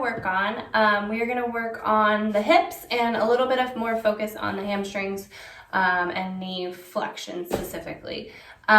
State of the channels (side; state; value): both; identical; correlation 1.00